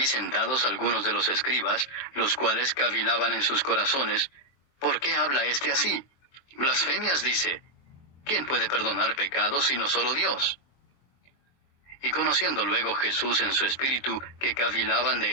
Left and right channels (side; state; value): right; late; 23 ms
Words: sentados algunos de los escribas, los cuales cavilaban en sus corazones: ¿Por qué habla éste así? Blasfemias dice. ¿Quién puede perdonar pecados sino solo Dios? Y conociendo luego Jesús en su espíritu que cavilaban de